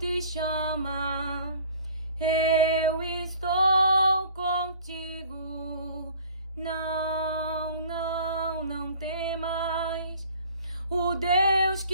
chama. Eu estou contigo, não temas. O Deus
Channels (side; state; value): both; inverted; correlation -0.50